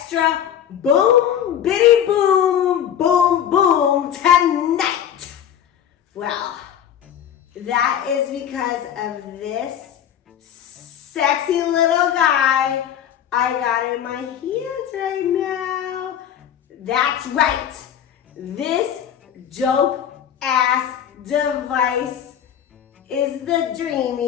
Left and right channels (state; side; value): quieter; right; 9.6 dB